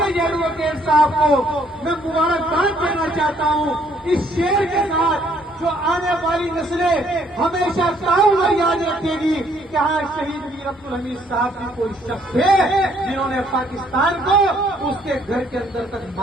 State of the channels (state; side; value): normal; both; correlation 0.65